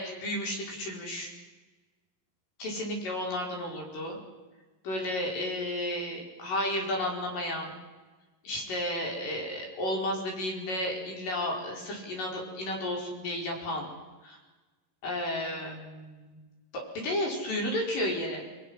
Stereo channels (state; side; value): late; right; 11 ms